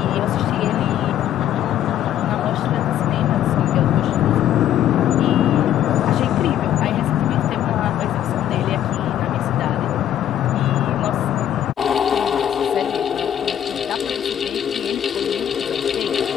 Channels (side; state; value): right; quieter; 10.9 dB